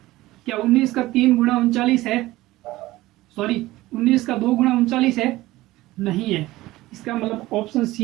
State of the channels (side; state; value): left; quieter; 17.7 dB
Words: क्या 19 का 3 गुना 39 है? सॉरी, 19 का 2 गुना 39 है? नहीं है। इसका मतलब ऑप्शन